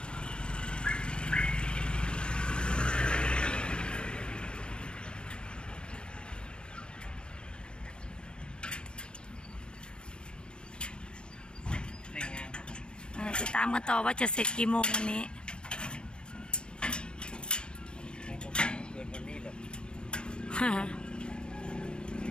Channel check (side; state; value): right; late; 0.052 ms